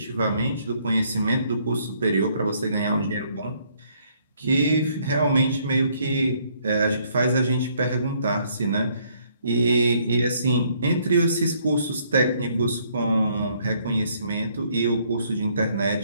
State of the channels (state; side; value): inverted; both; correlation -0.67